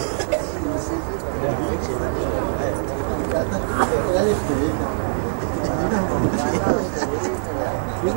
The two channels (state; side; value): silent; left; digital silence